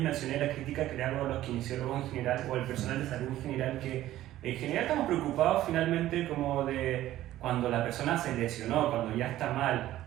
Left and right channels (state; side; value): quieter; left; 14.2 dB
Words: mencioné la crítica que le hago a los kinesiólogos en general, o al personal de salud en general, que en general estamos preocupados finalmente como de cuando la persona se lesionó, cuando ya está